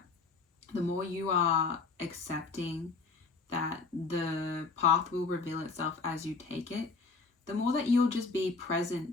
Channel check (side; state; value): right; quieter; 4.3 dB